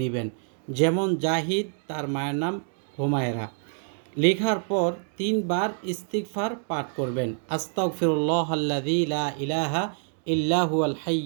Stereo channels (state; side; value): silent; left; 60 dB below the other